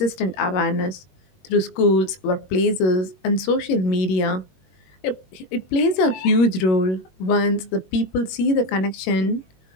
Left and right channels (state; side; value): late; right; 21 ms